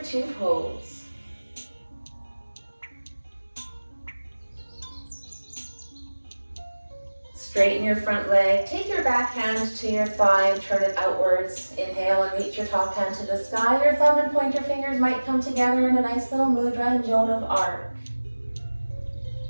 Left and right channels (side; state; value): both; inverted; correlation -1.00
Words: two pose. Straighten your front leg, take your back hand to your thigh and turn it outwards. Inhale and reach your top hand to the sky. Your thumb and pointer fingers might come together in a nice little mudra and jona of arc.